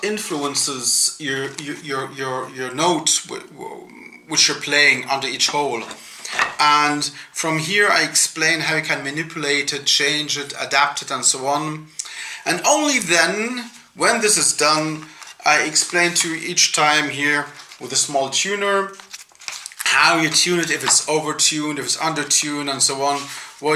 influences your notes which you're playing under each hole. And from here I explain how you can manipulate it, change it, adapt it, and so on. And only then, when this is done, I explain to you each time here with a small tuner how you tune it, if it's over-tuned, if it's under-tuned, and so on,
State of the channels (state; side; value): identical; both; correlation 1.00